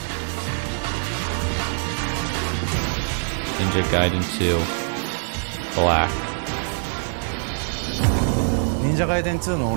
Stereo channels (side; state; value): left; silent; digital silence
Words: Ninja Gaiden 2. Black. 忍者ガイデン2のオ